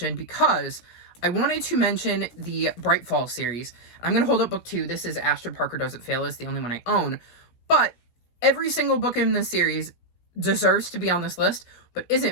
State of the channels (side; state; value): right; late; 17 ms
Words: because I wanted to mention the Bright Fall series. I'm going to hold up book 2. This is Astrid Parker Doesn't Fail. It's the only one I own. But every single book in this series deserves to be on this list, but